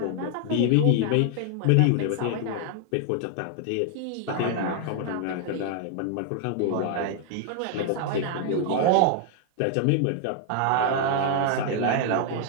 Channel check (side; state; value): both; different; correlation 0.00